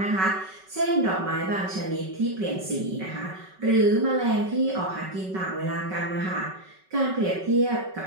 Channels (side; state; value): left; late; 5.3 ms